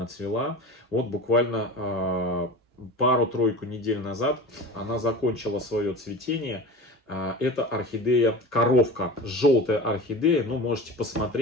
цвела. Вот буквально пару-тройку недель назад она закончила свое цветение. Это орхидея коровка, желтая орхидея. Ну, можете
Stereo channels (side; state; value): both; normal; correlation 0.33